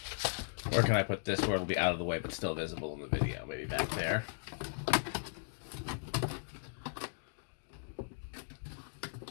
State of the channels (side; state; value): right; silent; digital silence